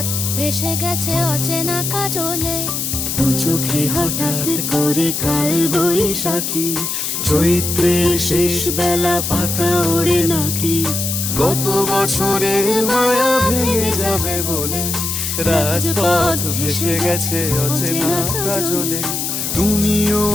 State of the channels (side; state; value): left; noise; hiss, 2 dB below the sound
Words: ভেসে গেছে অচেনা কাজলে। দু চোখে হঠাৎ করে কাল বৈশাখী, চৈত্রের শেষ বেলা পাতা ওড়ে নাকি, গত বছরের মায়া ভেঙে যাবে বলে, রাজপথ ভেসে গেছে অচেনা কাজলে। তুমিও